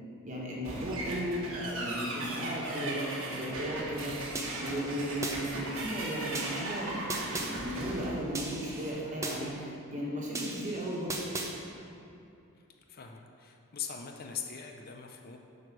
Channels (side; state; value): both; normal; correlation 0.32